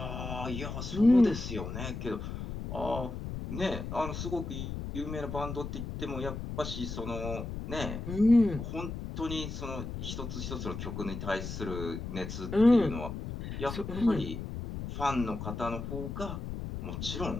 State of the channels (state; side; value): noise; left; rumble, 6 dB below the sound